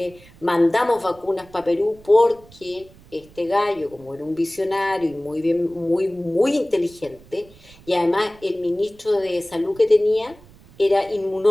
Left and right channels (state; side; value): noise; right; rumble, 24 dB below the sound